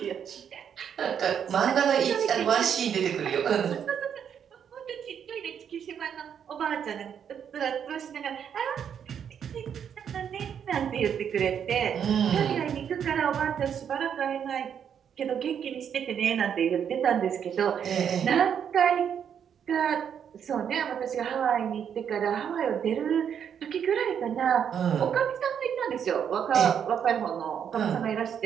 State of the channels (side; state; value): left; quieter; 8.2 dB